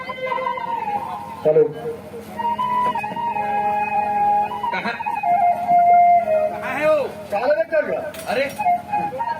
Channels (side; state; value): both; identical; correlation 1.00